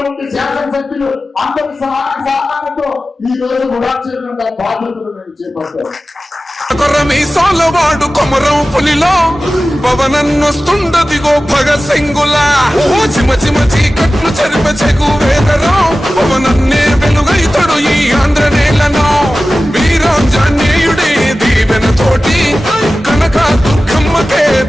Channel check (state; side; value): normal; both; correlation 0.95